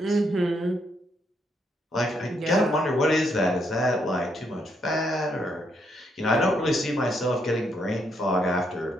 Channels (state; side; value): normal; both; correlation 0.76